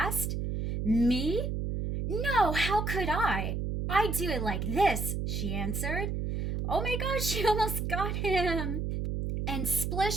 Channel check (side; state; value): right; noise; hum, 2 dB below the sound